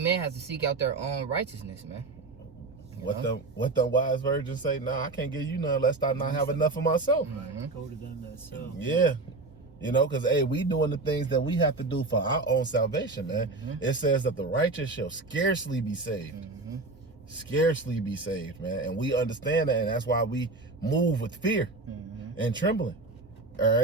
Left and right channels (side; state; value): left; quieter; 3.4 dB